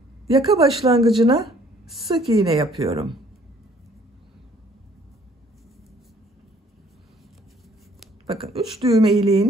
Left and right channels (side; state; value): both; normal; correlation 0.59